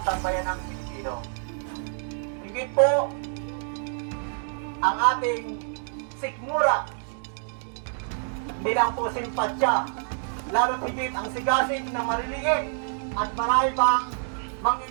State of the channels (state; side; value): silent; left; digital silence